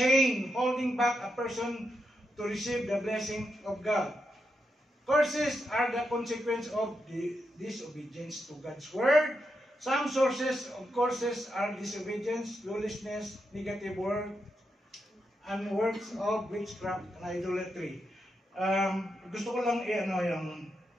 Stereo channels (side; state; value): both; normal; correlation 0.84